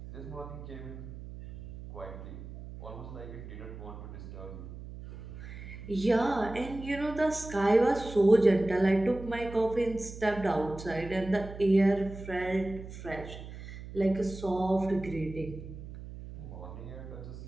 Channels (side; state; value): right; noise; hum, 12 dB below the sound